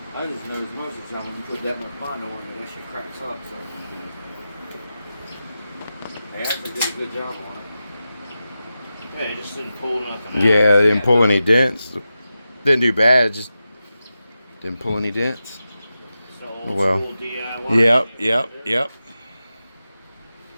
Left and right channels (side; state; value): both; inverted; correlation -0.92